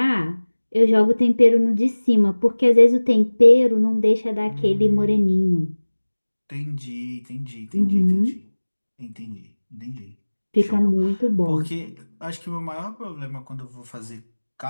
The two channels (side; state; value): both; inverted; correlation -1.00